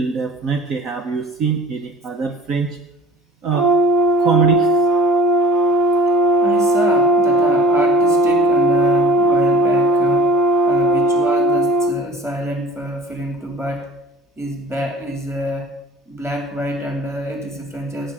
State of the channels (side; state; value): both; normal; correlation 0.45